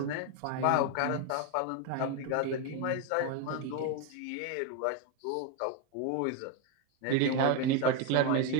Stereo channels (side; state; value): both; different; correlation 0.02